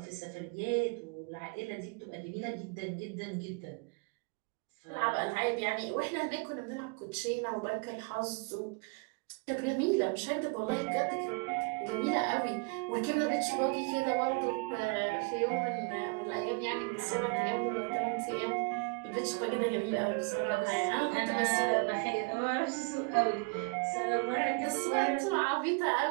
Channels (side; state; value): left; quieter; 33.1 dB